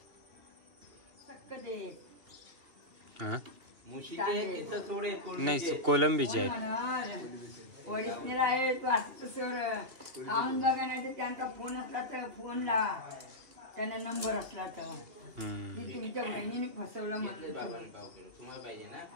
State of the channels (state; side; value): late; left; 2.9 ms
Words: नाही कोलंबीचे आहेत. ओरिजिनल आहे तू असं सर खाऊन बघा. नाही तर त्यांचा फोन असला तर फोन लावा. त्यांना नंबर असला तर. तुमच्या बहिणीने फसवलं म्हटलं. तुम्हाला पाहिजे ना.